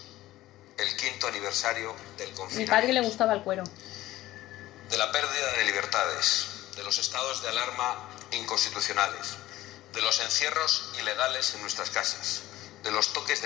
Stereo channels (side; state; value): right; quieter; 15.9 dB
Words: el 5º aniversario del confinamiento. Mi padre le gustaba el cuero. De la pérdida de libertades, de los estados de alarma inconstitucionales, de los encierros ilegales en nuestras casas, de los toques